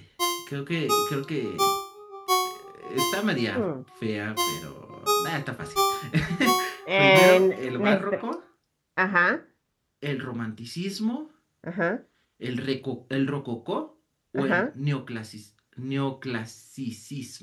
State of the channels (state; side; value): identical; both; correlation 1.00